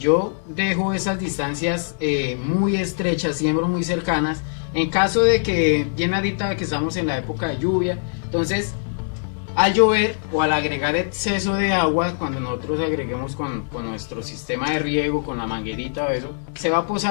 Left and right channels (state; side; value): silent; right; 62 dB below the other